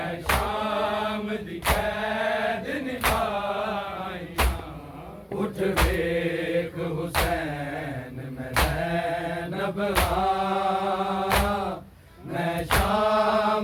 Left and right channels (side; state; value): both; identical; correlation 1.00